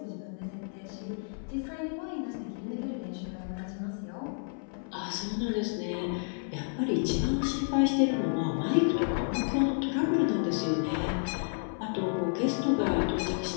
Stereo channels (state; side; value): silent; right; 55 dB below the other